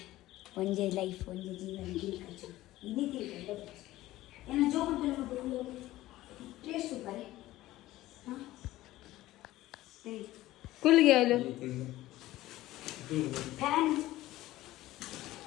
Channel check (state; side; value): quieter; right; 16.2 dB